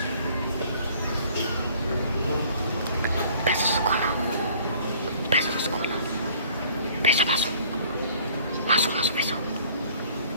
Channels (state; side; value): inverted; both; correlation -0.55